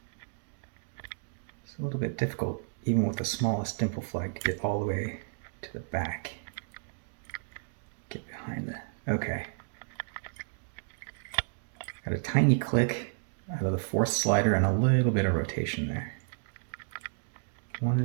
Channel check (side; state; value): left; silent; digital silence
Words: It's a little bit difficult, even with the smallest dimple flag, to get all the way to the back. Get behind the... Okay. Got a tiny click out of the 4th slider and a little bit of rotation there. 1